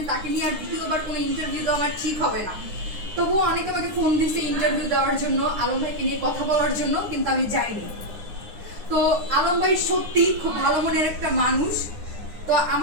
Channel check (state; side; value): late; left; 9.8 ms